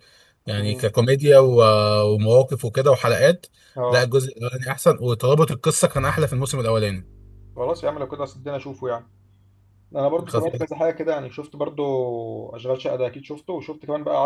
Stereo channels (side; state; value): both; identical; correlation 1.00